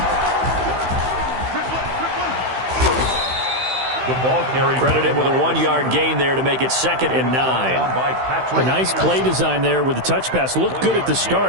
The ball carried. Credit him with a 1-yard gain there to make it 2nd and 9. A nice play design there with the touch pass. Looked good at the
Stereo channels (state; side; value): late; left; 16 ms